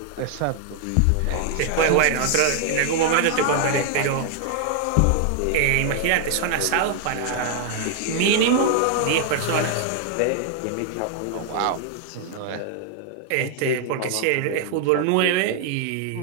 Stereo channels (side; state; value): both; different; correlation 0.00